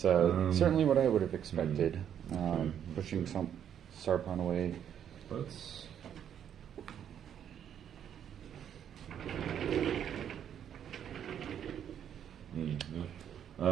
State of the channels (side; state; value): left; quieter; 9.3 dB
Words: certainly what I would have expected. Okay. Pushing some Sarpon away. Let's. Yeah.